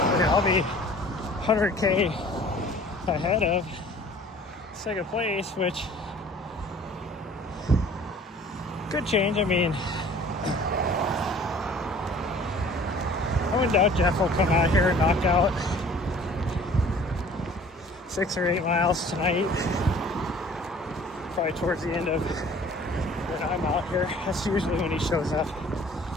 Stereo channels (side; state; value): both; normal; correlation 0.50